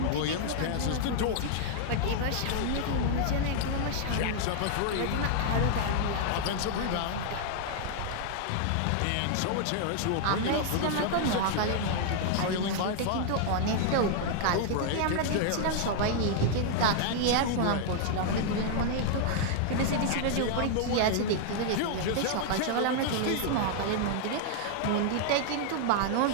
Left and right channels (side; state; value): both; different; correlation -0.01